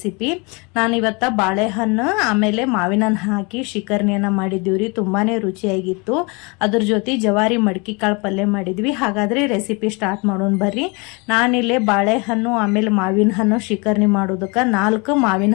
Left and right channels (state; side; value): quieter; right; 29.6 dB